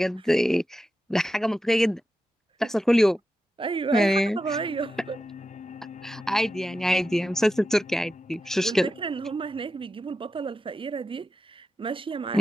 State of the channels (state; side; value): normal; both; correlation 0.90